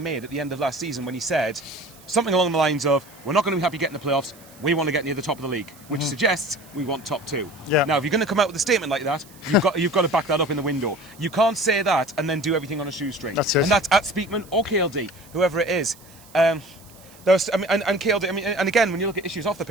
at the end of last season when he said something along the lines of, we're not going to be happy getting the playoffs, we want to get near the top of the league, which suggests we want top 2. Now, if you're going to come out with a statement like that, you've got to back that up in the window. You can't say that and then do everything on a shoestring. That's it. And that's at Speakman or KLD, whoever it is. And KLD, and again, when you look at issues off the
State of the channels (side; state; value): right; noise; hiss, 24 dB below the sound